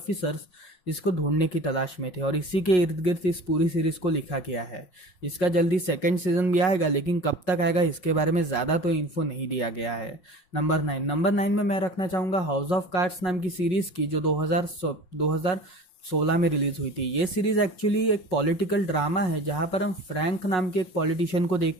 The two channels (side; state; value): right; late; 5.5 ms